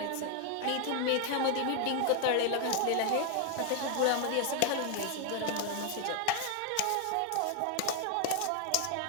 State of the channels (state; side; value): different; both; correlation 0.00